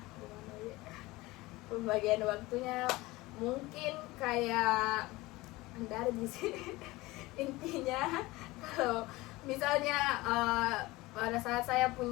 pembagian waktunya mungkin kayak Anda di sini. Intinya kalau misalnya pada saat saya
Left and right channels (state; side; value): quieter; right; 20.4 dB